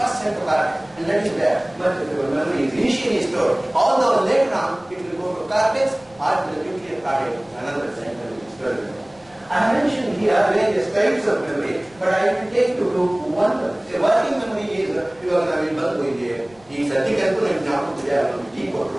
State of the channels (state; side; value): noise; right; rumble, 30 dB below the sound